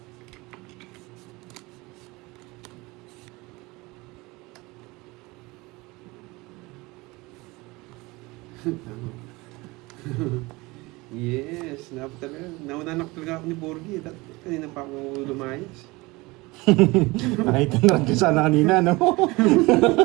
Yes, nauna na talaga ako ni Borgie. Kanina pa ako lumayas. Nakita na rin sana kanina, no?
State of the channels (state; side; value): quieter; left; 23.0 dB